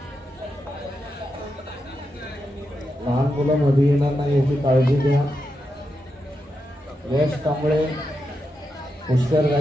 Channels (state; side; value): normal; both; correlation 0.86